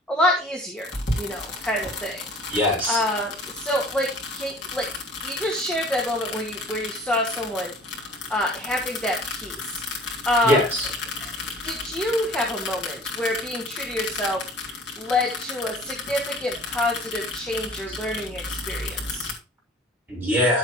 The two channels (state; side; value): normal; both; correlation 0.48